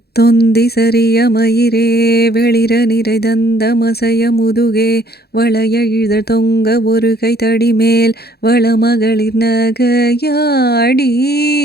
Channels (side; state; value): right; late; 0.46 ms